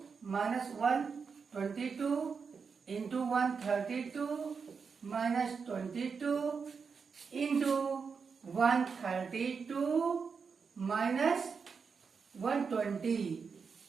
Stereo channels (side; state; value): left; quieter; 5.6 dB